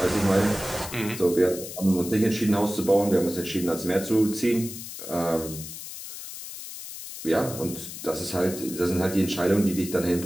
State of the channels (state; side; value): noise; left; hiss, 11 dB below the sound